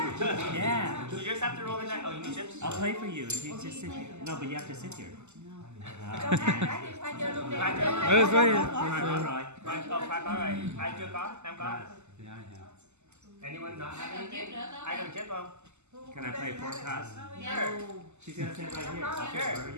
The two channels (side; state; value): left; late; 0.83 ms